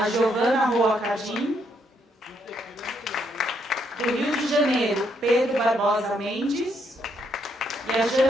Giovana Roa Cadim. Do Rio de Janeiro, Pedro Barbosa Mendes. E a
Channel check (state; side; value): normal; both; correlation 0.74